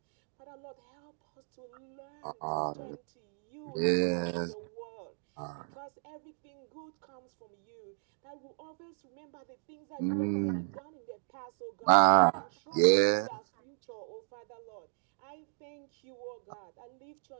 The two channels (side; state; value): left; silent; digital silence